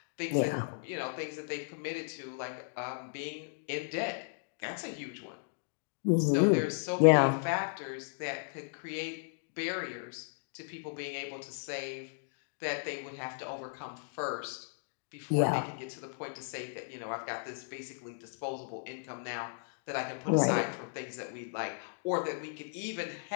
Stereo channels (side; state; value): right; silent; digital silence